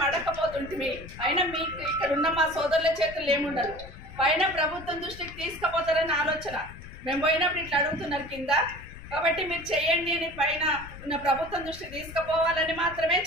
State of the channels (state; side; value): noise; left; rumble, 15 dB below the sound